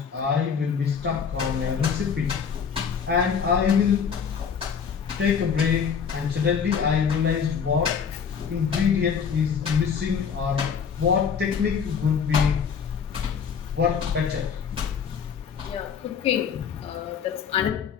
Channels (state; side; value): quieter; right; 6.8 dB